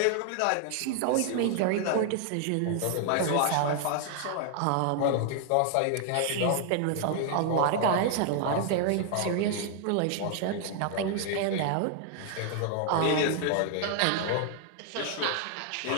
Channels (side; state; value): both; different; correlation 0.00